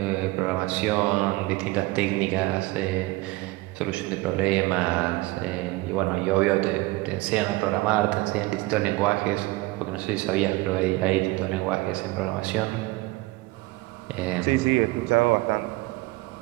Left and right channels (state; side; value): quieter; left; 21.2 dB